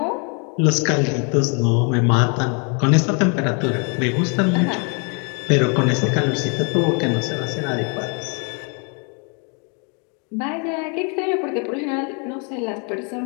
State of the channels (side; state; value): right; quieter; 37.3 dB